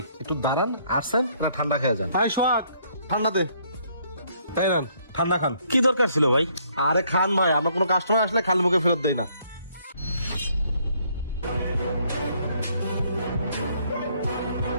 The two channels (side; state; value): both; inverted; correlation -0.67